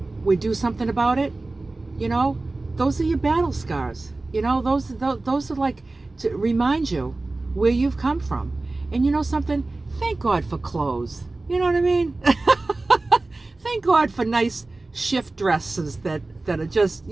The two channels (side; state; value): left; quieter; 3.2 dB